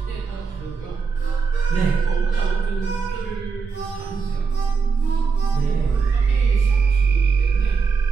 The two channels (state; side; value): quieter; left; 5.2 dB